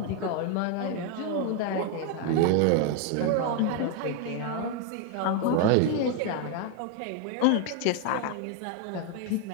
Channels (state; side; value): different; both; correlation 0.01